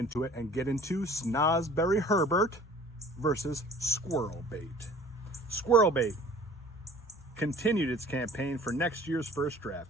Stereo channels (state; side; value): normal; both; correlation 0.48